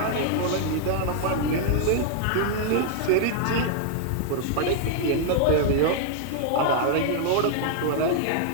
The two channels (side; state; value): both; different; correlation -0.01